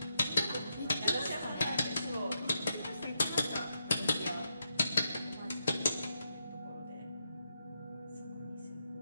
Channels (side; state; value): both; inverted; correlation -0.81